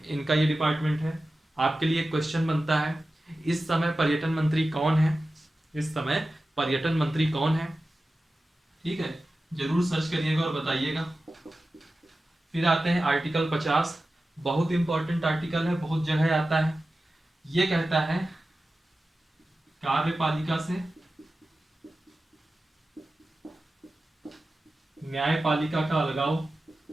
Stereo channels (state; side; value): normal; both; correlation 0.94